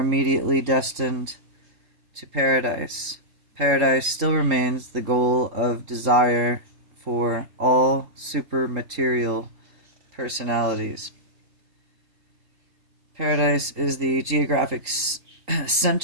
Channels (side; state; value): left; late; 3.8 ms